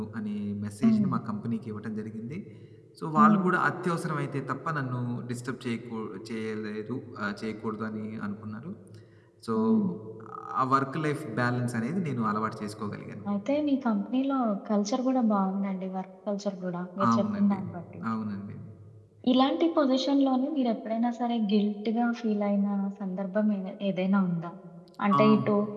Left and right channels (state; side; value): identical; both; correlation 1.00